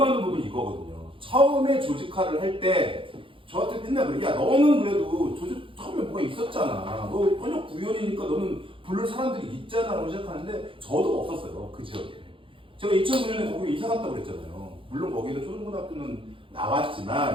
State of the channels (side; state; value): left; late; 0.25 ms